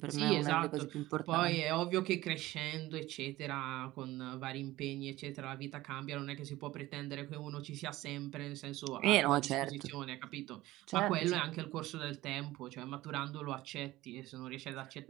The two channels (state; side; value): quieter; left; 17.3 dB